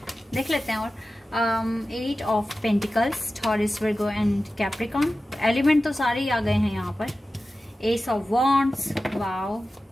देख लेते हैं। और 8 of pentacles, Taurus, Virgo and Capricorn. Element तो सारे ही आ गए हैं यहाँ पर। Ace of wands. वाओ,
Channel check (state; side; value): normal; both; correlation 0.94